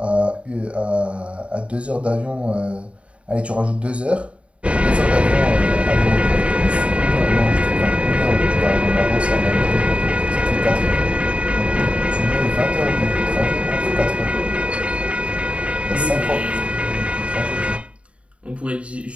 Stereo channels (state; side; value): late; left; 0.062 ms